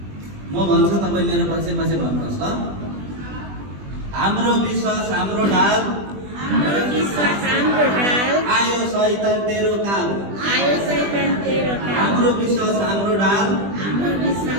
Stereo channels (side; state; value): left; late; 20 ms